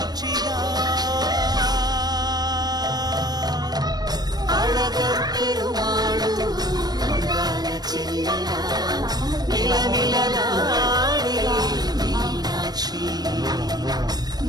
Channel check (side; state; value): left; late; 0.19 ms